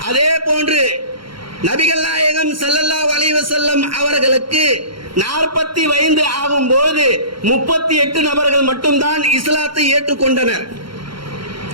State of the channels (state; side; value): late; left; 0.73 ms